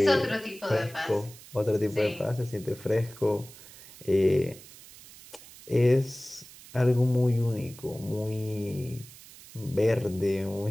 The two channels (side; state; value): right; noise; hiss, 19 dB below the sound